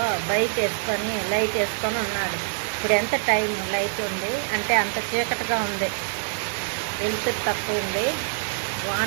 బైక్ వేసుకొని లైట్ వేసుకొని ఉన్నాడు. ఇప్పుడు ఎంత టైం లైట్ ఉంది అంటే అంత చీకటిగా ఉంది, వెలుతురు తక్కువ ఉంది.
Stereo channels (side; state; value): left; silent; digital silence